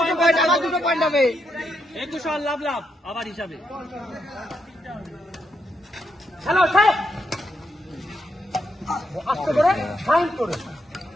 আবার দুটো পয়েন্ট হবে। 21 লাভ লাভ আবার হিসাবে। হ্যালো আস্তে করে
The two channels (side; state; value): both; normal; correlation 0.80